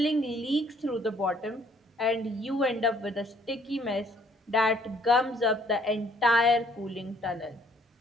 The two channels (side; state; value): both; normal; correlation 0.62